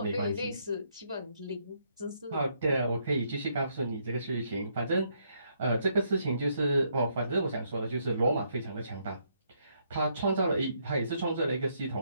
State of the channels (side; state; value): both; inverted; correlation -0.73